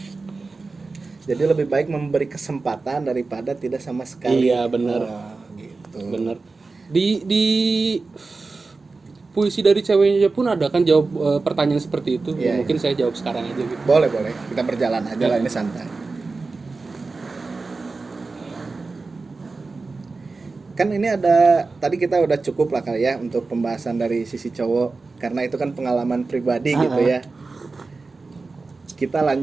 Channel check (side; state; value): left; quieter; 3.9 dB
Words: Jadi lebih baik memberi kesempatan daripada tidak sama sekali. Iya, benar. Oh, gitu. Bener. Di puisi dari ceweknya pun ada kan jawab pertanyaan seperti itu. Iya, Mungkin saya jawab sekarang aja gitu. Boleh. Kita berjalan aja lah, ini santai. Kan ini ada, tadi kita udah cukup lah kali ya untuk pembahasan dari sisi cowok, karena itu kan pengalaman pribadi gitu ya. Kita